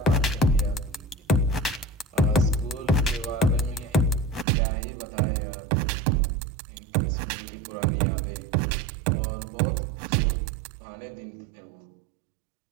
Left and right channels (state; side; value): drops out; left; at 4.5 s